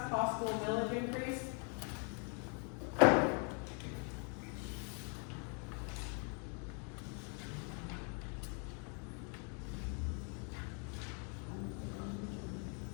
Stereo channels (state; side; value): quieter; right; 39.0 dB